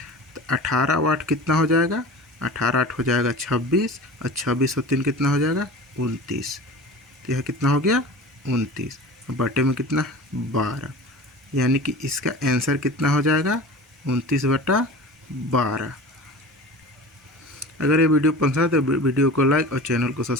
तो 18 और 8 कितना हो जाएगा? 18 8 हो जाएगा 26, और 26 और 3 कितना हो जाएगा? 29। तो यह कितना हो गया? 29। बटे में कितना है? 12, यानी कि इसका आंसर कितना हो जाएगा? 29/12। अगर ये वीडियो पसंद है तो वीडियो को लाइक और चैनल को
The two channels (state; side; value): normal; both; correlation 0.36